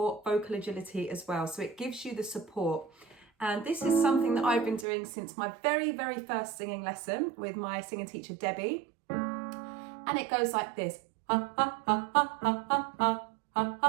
vocal agility as well. So it gives you the support. And this is something that I've been doing since my very, very first singing lesson with my singing teacher, Debbie. And it goes like this.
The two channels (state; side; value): drops out; left; at 4.9 s